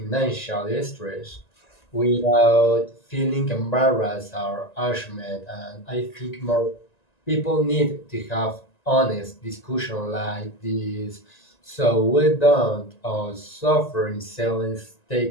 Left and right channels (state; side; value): late; right; 1.9 ms